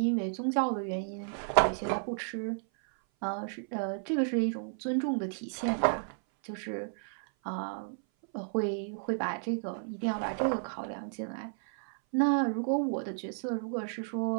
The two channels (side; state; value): left; silent; 56 dB below the other